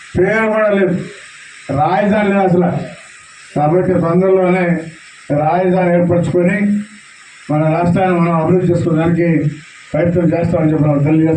పేరు కూడా లేదు, రాజధాని లేదు అసలు. కాబట్టి తొందరలోనే రాజధాని ఏర్పరచుకొని మన రాష్ట్రాన్ని మనం అభివృద్ధి చేసుకోవడానికి ప్రయత్నం చేస్తామని చెప్పి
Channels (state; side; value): identical; both; correlation 1.00